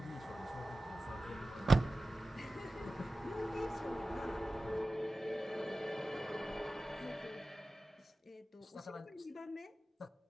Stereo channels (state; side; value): normal; both; correlation 0.95